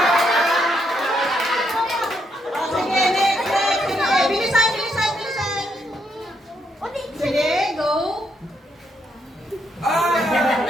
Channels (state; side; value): normal; both; correlation 0.76